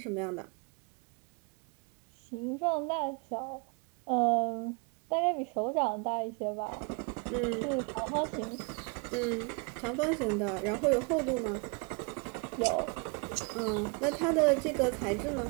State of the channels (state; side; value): quieter; left; 31.9 dB